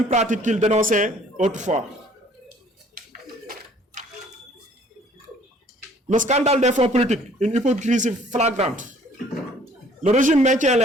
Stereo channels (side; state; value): both; normal; correlation 0.57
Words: pratiques qu'il dénonçait autrefois. Le scandale des fonds politiques, une hypocrisie flagrante. Le régime maintient